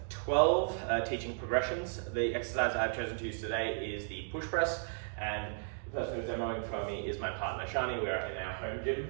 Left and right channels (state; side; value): silent; left; digital silence